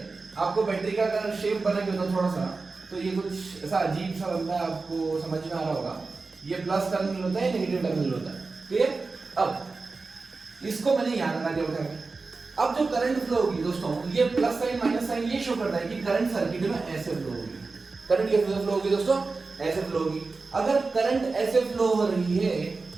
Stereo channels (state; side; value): quieter; left; 4.0 dB